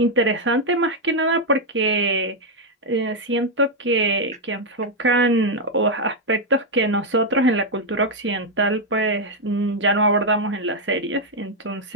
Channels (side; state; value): both; normal; correlation 0.00